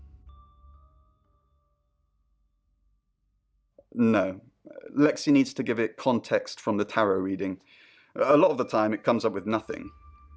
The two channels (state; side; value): identical; both; correlation 1.00